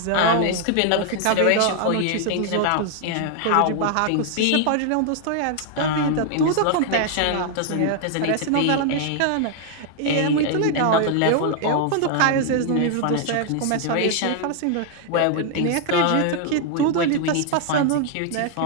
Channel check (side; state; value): both; different; correlation 0.00